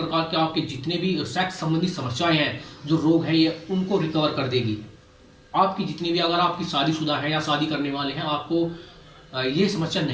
के आपके जितने भी सेक्स संबंधी समस्याएं हैं, जो रोग है, ये उनको रिकवर कर देगी। आपकी जितनी भी, अगर आपकी शादीशुदा है या शादी करने वाले हैं, आपको ये समस्या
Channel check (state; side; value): identical; both; correlation 1.00